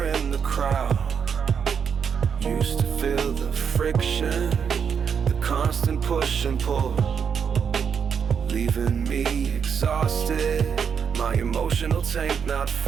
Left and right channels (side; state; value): left; quieter; 6.9 dB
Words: in the crowd. Used to feel the friction, the constant push and pull, leaving me exhausted, my emotional tank not